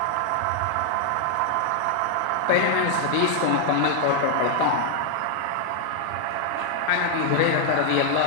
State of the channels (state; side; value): different; both; correlation 0.00